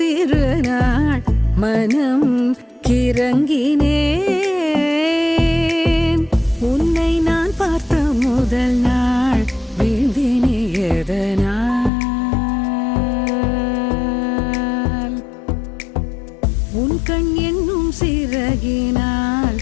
மனம் கிறங்கினேன். உன்னை நான் பார்த்த முதல் நாள் வீழ்ந்தினே எதனால், உன் கண் என்னும் சிறகினால்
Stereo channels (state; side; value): drops out; right; at 11.9 s